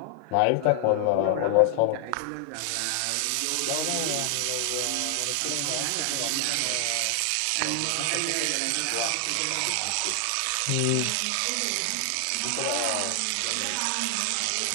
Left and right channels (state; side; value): different; both; correlation 0.00